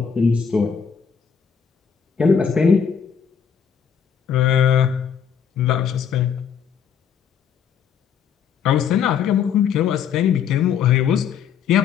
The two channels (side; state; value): right; quieter; 7.3 dB